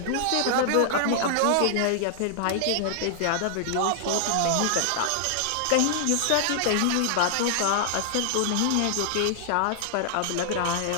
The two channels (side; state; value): both; different; correlation -0.01